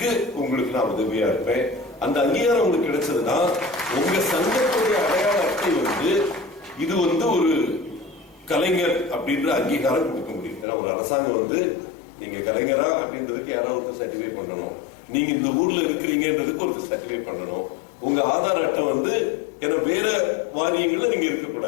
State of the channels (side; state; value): right; drops out; at 10.7 s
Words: உங்களுக்கு நான் உதவியா இருப்பேன். அந்த அங்கீகாரம் உங்களுக்கு கிடைச்சதுன்னா உங்க சங்கத்துடைய அடையாள அட்டை வந்து இது வந்து ஒரு கலைஞர் அப்படின்ற அங்கீகாரம் கொடுக்க முடியும். ஏன்னா ஒரு அரசாங்கம் வந்து நீங்க கலைஞரா அப்படின்றதுக்கு யாராவது சர்டிஃபை பண்ணணும், நீங்க இந்த ஊர்ல இருக்கிறீங்கன்றதுக்கு ஒரு சர்டிஃபை பண்ணணும். உங்க ஆதார் அட்டை வந்து ஏன்னா வேற வாரியங்கள்ல நீங்க